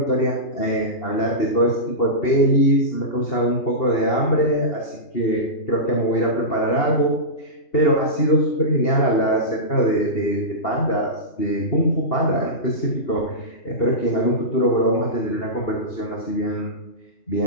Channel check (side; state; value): right; late; 2.8 ms